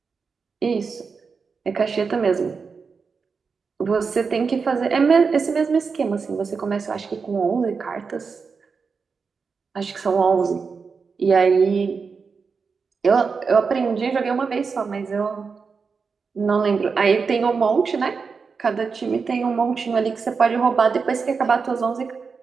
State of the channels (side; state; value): left; quieter; 5.2 dB